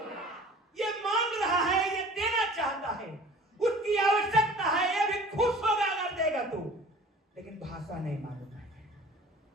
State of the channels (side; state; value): both; normal; correlation 0.46